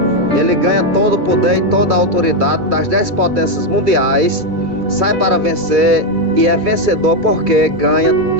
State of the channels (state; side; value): late; left; 2.3 ms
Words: Ele ganha todo o poder e toda a autoridade das 10 potências mundiais. Sai para vencer e é vencedor porque ganha